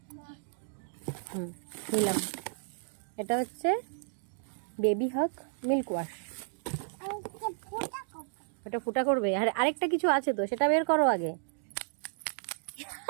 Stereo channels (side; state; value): left; silent; digital silence